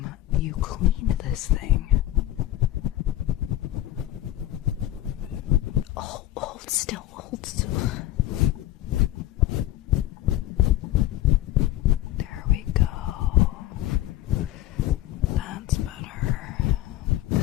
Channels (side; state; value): right; quieter; 14.3 dB